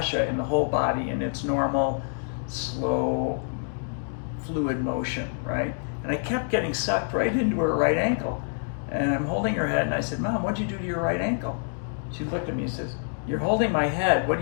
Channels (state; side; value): silent; right; digital silence